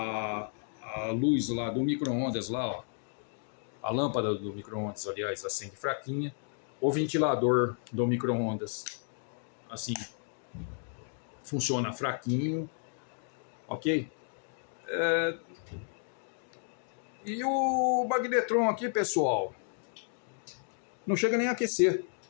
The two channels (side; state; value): right; silent; 56 dB below the other